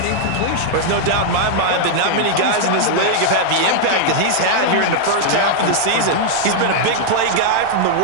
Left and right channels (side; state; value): both; different; correlation -0.01